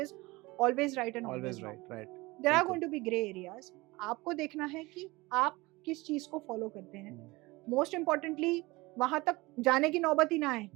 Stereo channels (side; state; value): left; quieter; 22.1 dB